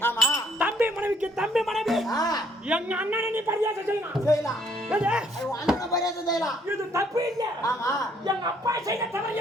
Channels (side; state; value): both; normal; correlation 0.65